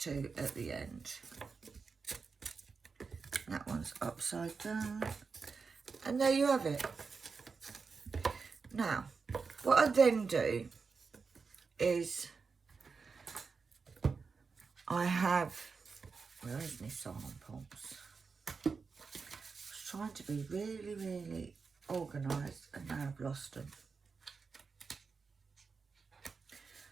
at the end. That one's upside down, and there you have it. Now, what I then do is I have, where is my samples? I was trying to be really organised, and now I've lost them.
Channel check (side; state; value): left; quieter; 5.0 dB